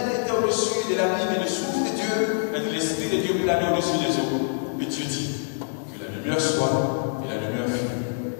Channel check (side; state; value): right; silent; digital silence